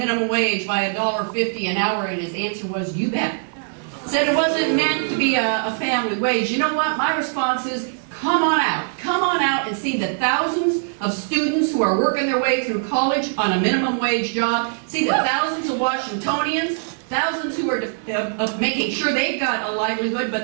wage by $1.50 an hour, and his answer was, you bet. Said it wasn't meant to be a family wage. You know what? My response is, come on out and see the thousands of students who are working their way through college on a minimum wage job. See the thousands of Washingtonians, thousands who are making sure they've got a livelihood,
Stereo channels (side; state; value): left; silent; 57 dB below the other